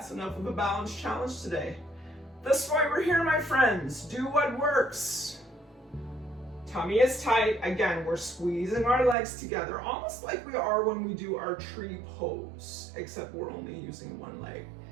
enough of a balance challenge today. That's why we're here, my friends. Do what works. Tummy is tight. Again, we're squeezing our legs together, almost like we are when we do our tree pose, except we're only using one leg.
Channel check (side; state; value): left; drops out; at 9.2 s